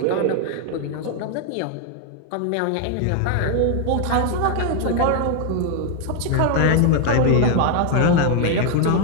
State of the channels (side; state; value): both; different; correlation 0.00